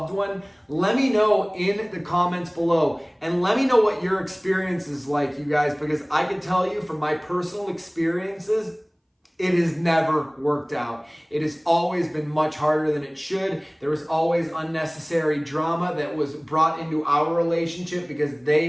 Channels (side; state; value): both; identical; correlation 1.00